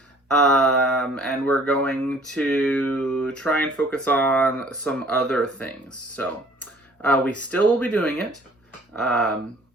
And we're going to try and focus on some other things. So we still will be doing it.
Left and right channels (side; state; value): both; normal; correlation 0.54